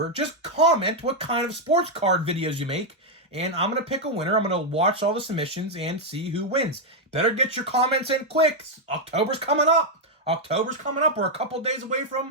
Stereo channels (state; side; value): normal; both; correlation 0.00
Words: just comment what kind of sports card videos you make, and I'm going to pick a winner. I'm going to watch all the submissions and see who wins. Better get your comments in quick. October's coming up. We're a couple days away